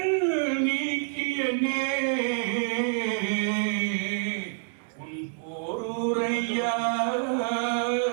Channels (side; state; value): left; silent; 60 dB below the other